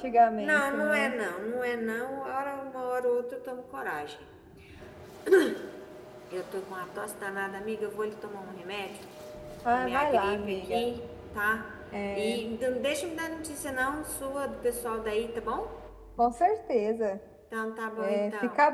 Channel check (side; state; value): both; identical; correlation 1.00